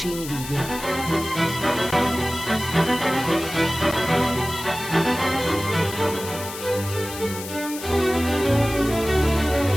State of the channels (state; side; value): noise; left; hiss, 11 dB below the sound